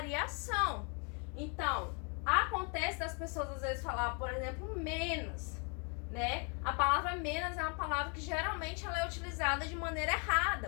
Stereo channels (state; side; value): quieter; right; 36.7 dB